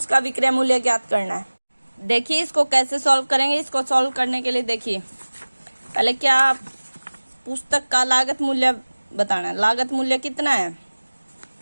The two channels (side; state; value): both; inverted; correlation -1.00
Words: विक्रय मूल्य ज्ञात करना है। देखिए इसको कैसे सॉल्व करेंगे, इसको सॉल्व करने के लिए देखिए पहले क्या, पुस्तक का लागत मूल्य बताना है। लागत मूल्य कितना है,